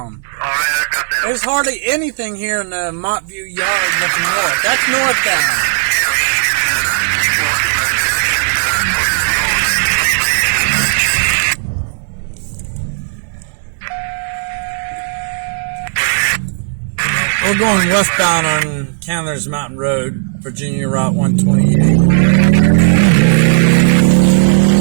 There's hardly anything here in the Montview yard looking north. That's northbound. We're going westbound on Candler's Mountain Road, Virginia Route 128.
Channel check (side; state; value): left; silent; digital silence